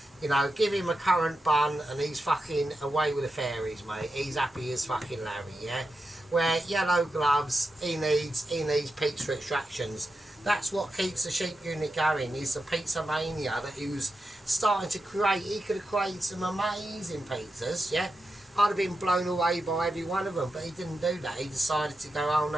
You know, give him a currant bun and he's fucking away with the fairies, mate. He's happy as fucking Larry, yeah? Where yellow gloves, he needs pizza extractions. That's what keeps the sheep unit going, is the pizza mania that he was starting to create. He could have created some amazing pizzas, yeah? I'd have been blown away by every one of them, but he didn't do that. He decided to go, oh,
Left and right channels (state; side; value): normal; both; correlation 0.89